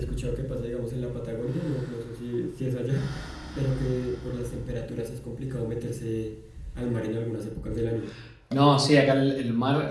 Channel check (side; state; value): both; identical; correlation 1.00